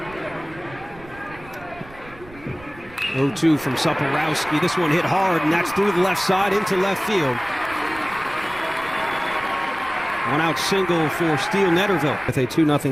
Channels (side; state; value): right; noise; rumble, 21 dB below the sound